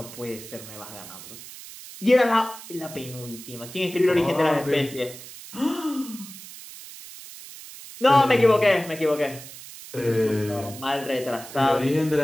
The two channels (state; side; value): noise; right; hiss, 15 dB below the sound